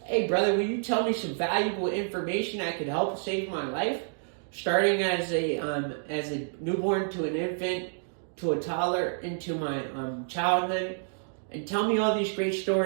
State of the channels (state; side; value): silent; left; digital silence